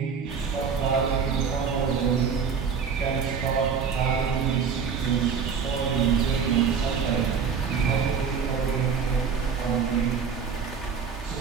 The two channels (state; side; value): quieter; left; 6.2 dB